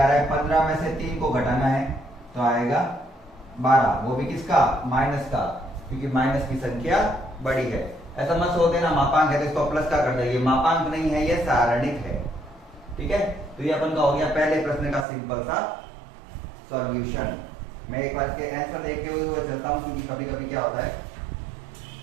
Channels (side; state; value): left; drops out; at 15.1 s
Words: रहा है 15 में से 3 को घटाना है तो आएगा 12, वो भी किसका माइनस का, क्योंकि माइनस की संख्या बड़ी है। ऐसा मत सोच देना मापांक है तो इसको प्लस का कर देंगे, मापांक नहीं है ये सारणिक है। ठीक है, तो ये अपन का हो गया पहले प्रश्न का सिंपल सा सॉल्यूशन। मैं एक बार इसके आंसर देखते हुए चलता हूं, क्योंकि कभी कभी क्या होता है